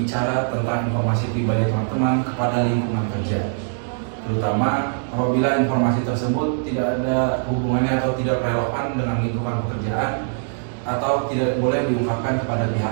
tentang informasi pribadi teman-teman kepada lingkungan kerja, terutama apabila informasi tersebut tidak ada hubungannya atau tidak relevan dengan lingkungan pekerjaan atau tidak boleh diungkapkan kepada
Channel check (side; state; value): left; silent; digital silence